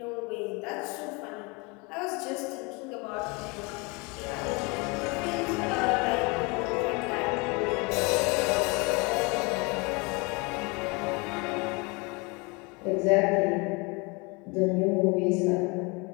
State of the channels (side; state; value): right; quieter; 28.5 dB